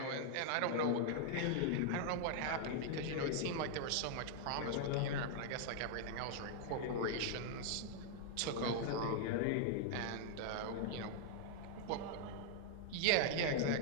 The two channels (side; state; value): both; different; correlation -0.01